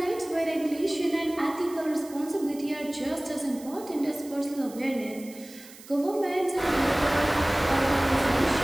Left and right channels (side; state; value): right; noise; hiss, 19 dB below the sound